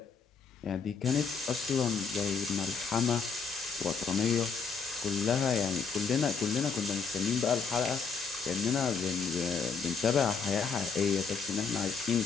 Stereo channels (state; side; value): quieter; right; 5.5 dB